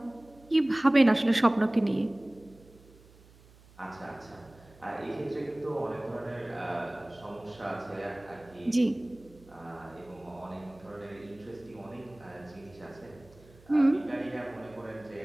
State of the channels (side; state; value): right; noise; hum, 25 dB below the sound